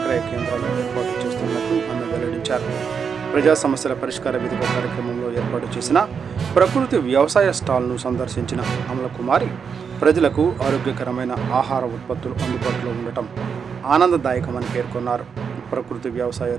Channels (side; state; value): left; quieter; 6.4 dB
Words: కేంద్రాలు ఏర్పాటు చేస్తున్నట్లు ఆమె వెల్లడించారు. ప్రజా సమస్యల పరిష్కార వేదిక కార్యక్రమంలో ఏర్పాటు చేసిన ప్రకృతి వ్యవసాయ స్టాల్ను సందర్శించిన అమలకుమారి ప్రజలకు ఆరోగ్యకరమైన ఆహార ఉత్పత్తులు అందుబాటులో ఉండటం ఆనందదాయకమని పేర్కొన్నారు. ప్రకృతి వ్యవసాయ